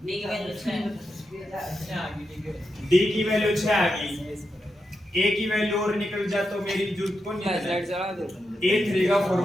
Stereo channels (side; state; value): both; normal; correlation 0.86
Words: D की वैल्यू 6 आ गई। A की वैल्यू और निकल जा तो मेरी जरूरत को नहीं है। A3 का